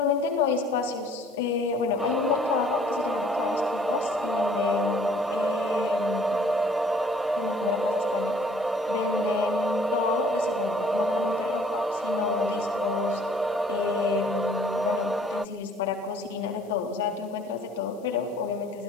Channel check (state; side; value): noise; left; hiss, 30 dB below the sound